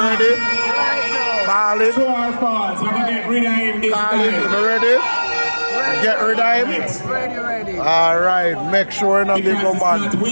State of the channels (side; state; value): both; inverted; correlation -1.00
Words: ready? Call it. True or false? We're gonna get rid of him this Call it. time. You ready? Get rid of him? Ready. Alright. Make sure not big old man. Because